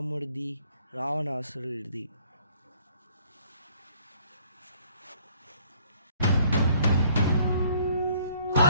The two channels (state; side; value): inverted; both; correlation -0.62